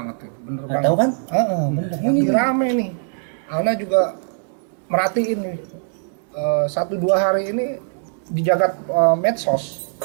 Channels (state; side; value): silent; left; digital silence